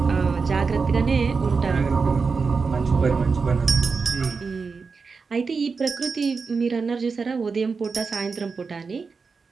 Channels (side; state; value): left; quieter; 4.9 dB